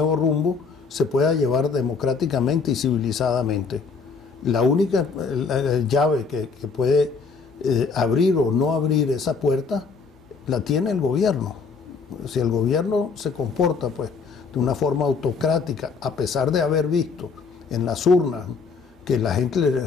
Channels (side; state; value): right; quieter; 5.0 dB